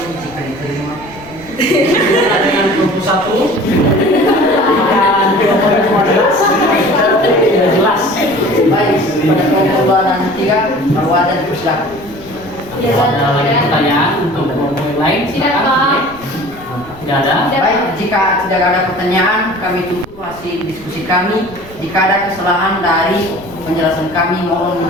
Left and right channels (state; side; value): noise; left; rumble, 21 dB below the sound